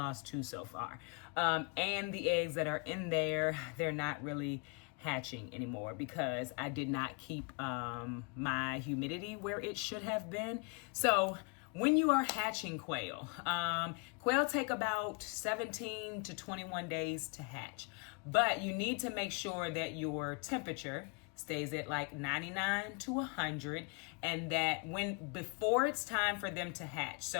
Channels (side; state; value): right; quieter; 33.0 dB